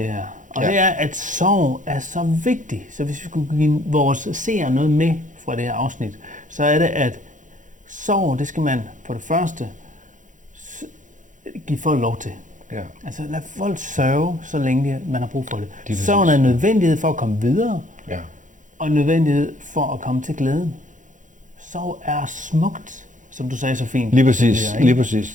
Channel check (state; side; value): late; left; 0.37 ms